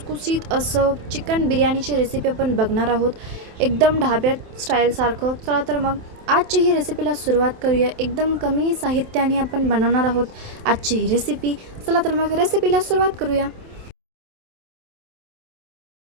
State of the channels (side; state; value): left; late; 27 ms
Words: असं चिकन बिर्याणीची रेसिपी आपण बघणार आहोत, एकदम ढाब्यात स्टाईलसारखं। चला तर मग आजची ही रेसिपीला सुरुवात करूया। एकदम कमी साहित्याने आपण बनवणार आहोत आजची ही रेसिपी। चला तर मग रेसिपीला सुरुवात करूया।